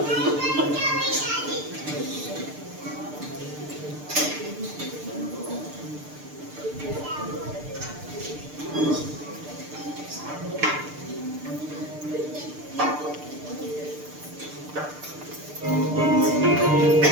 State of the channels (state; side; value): late; left; 6.7 ms